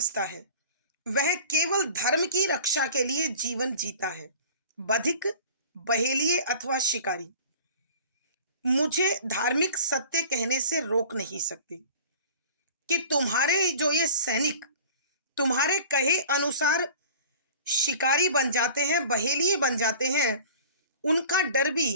है। वह केवल धर्म की रक्षा के लिए जीवन जीता है। बधिक, बहेलिए अथवा शिकारी मुझे धार्मिक सत्य कहने से रोक नहीं सकते। कि तुम्हारे जो ये सैनिक तुम्हारे कहे अनुसार शिकारी बन जाते हैं, बहेलिए बन जाते हैं, उनका डर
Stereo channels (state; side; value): inverted; both; correlation -0.44